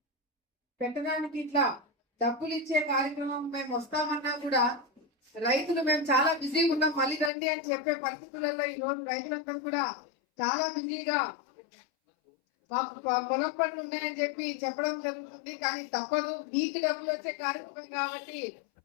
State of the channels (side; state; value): right; drops out; at 7.3 s